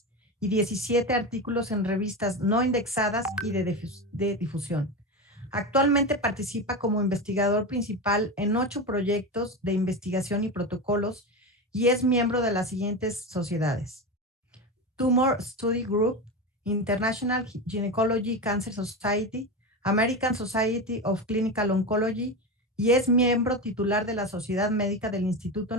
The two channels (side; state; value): both; normal; correlation 0.20